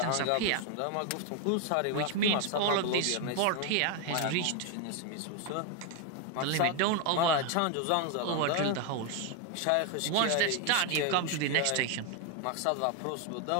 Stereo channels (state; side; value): different; both; correlation 0.01